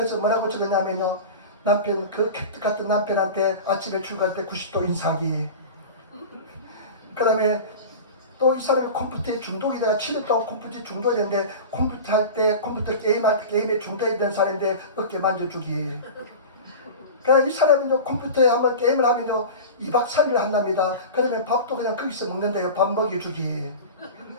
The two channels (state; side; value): inverted; both; correlation -0.31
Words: 뭐라고 적었냐면요, 남편, 그 캣 같은 남편한테 아침에 출근할 때 90도 인사하기. 그 다음에 또 이 사람이 컴퓨터에 중독이 돼가 7년 동안 컴퓨터에 중독이 됐는데, 컴퓨터 할 때, 컴퓨터 게임할 때 게임에 중독이 된 사람인데 어깨 만져주기. 그러니까 이 사람은요, 컴퓨터에 한번 게임을 하면요 2박 3일 한답니다. 그러면 밥도 그냥 거기서 먹는데요, 밥 먹여주기.